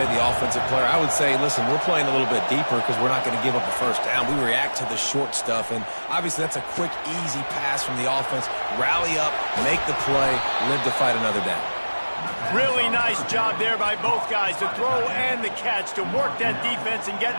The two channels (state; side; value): inverted; both; correlation -1.00